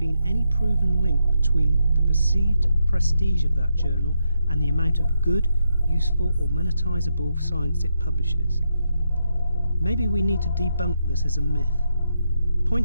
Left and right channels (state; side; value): inverted; both; correlation -0.81